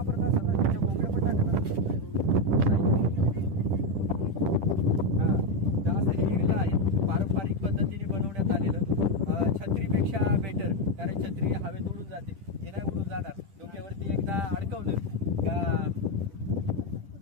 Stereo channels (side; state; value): left; late; 10 ms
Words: असतात ना, त्याच्या भोंगडं पण टाकतात हा। तर असं हे इरलं आहे पारंपरिक पद्धतीने बनवण्यात आलेलं, छत्रीपेक्षा बेटर, कारण छत्री हवेत उडून जाते, हे नाही उडून जाणार। डोक्यावरती एकदा अडकवलं का